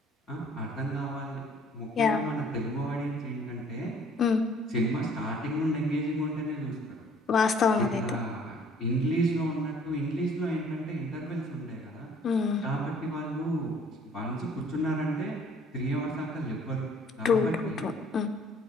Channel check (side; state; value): both; normal; correlation 0.57